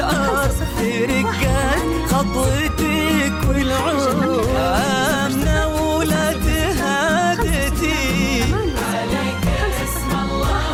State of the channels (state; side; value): identical; both; correlation 1.00